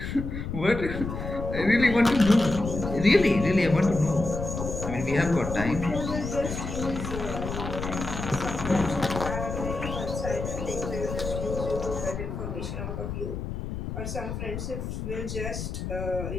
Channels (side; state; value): left; noise; rumble, 6 dB below the sound